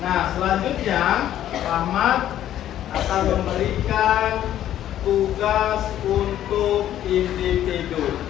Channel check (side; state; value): right; quieter; 11.8 dB